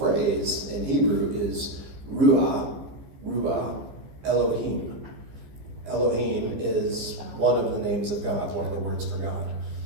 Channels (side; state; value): left; late; 15 ms